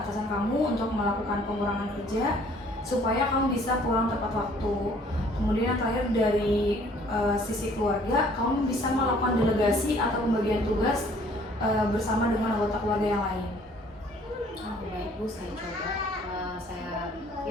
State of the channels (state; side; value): normal; both; correlation 0.57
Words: kamu untuk melakukan pengurangan kerja supaya kamu bisa pulang tepat waktu. Kemudian yang terakhir dari sisi keluarga, kamu bisa melakukan delegasi atau pembagian tugas bersama dengan anggota keluarga yang lain. Baik Bu, saya coba. Saya